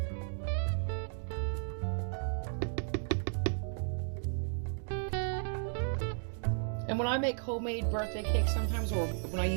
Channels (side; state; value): left; silent; digital silence